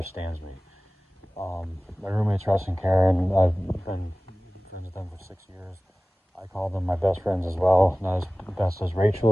me. My roommates Russ and Karen, I've been friends with them for 6 years. I call them my best friends as well. Not as best as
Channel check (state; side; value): normal; both; correlation 0.98